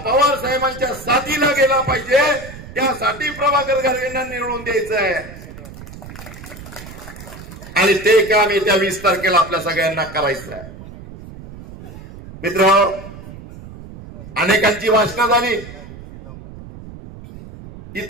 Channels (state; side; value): noise; right; rumble, 15 dB below the sound